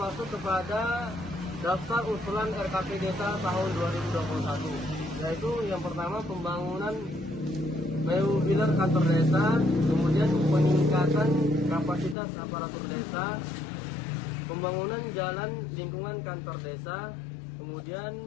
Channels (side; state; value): right; drops out; at 12.2 s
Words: kepada daftar usulan RKP Desa tahun 2021, yaitu yang pertama pembangunan modular kantor desa, kemudian peningkatan kapasitas aparatur desa, pembangunan jalan lingkungan kantor desa,